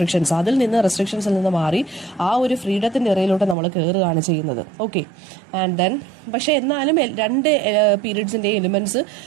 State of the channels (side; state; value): left; drops out; at 3.6 s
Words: റെസ്ട്രിക്ഷൻസിൽ നിന്ന് മാറി ആ ഒരു ഫ്രീഡത്തിൻ്റെ ഇറയിലോട്ട് നമ്മൾ കയറുകയാണ് ചെയ്യുന്നത്. ഓക്കെ, ആൻഡ് ദെൻ പക്ഷേ എന്നാലും രണ്ട് പീരീഡ്സിൻ്റെ എലിമെന്റ്സ്